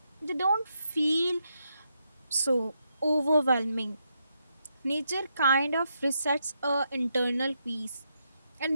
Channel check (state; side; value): inverted; both; correlation -0.81